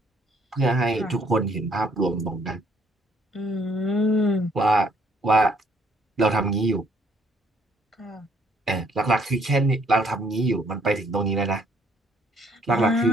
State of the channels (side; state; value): both; normal; correlation 0.66